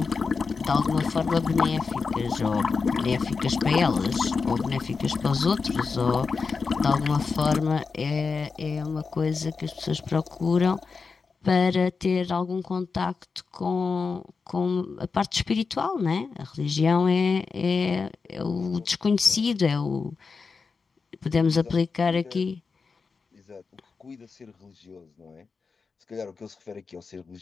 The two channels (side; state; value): right; quieter; 4.9 dB